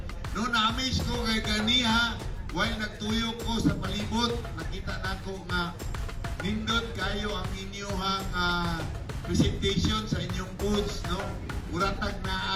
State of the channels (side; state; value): both; identical; correlation 1.00